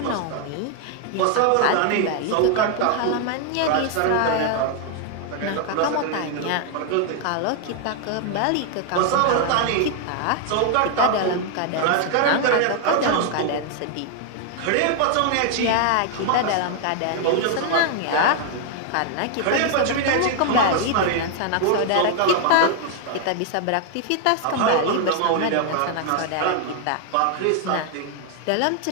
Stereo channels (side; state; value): both; different; correlation 0.00